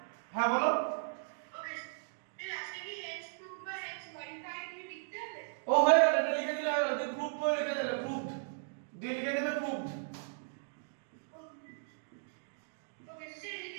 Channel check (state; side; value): silent; left; digital silence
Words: হ্যাঁ বলো, ওকে স্যার রাশি কি হেক্স কিউব বা হেক্স মডিফাই দিয়ে লিখতে হবে ও হয়ে গেল, এটা লিখে দিলে হয়ে গেল, তুমি প্রুফ করে লিখে দিলে, প্রুফ দিয়ে লিখে দেবে প্রুফ, ওকে স্যার